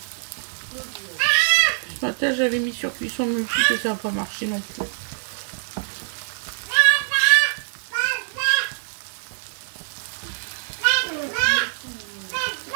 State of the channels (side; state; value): left; silent; digital silence